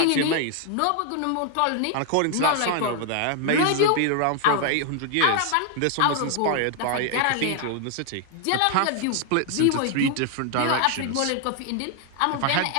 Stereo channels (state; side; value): different; both; correlation 0.00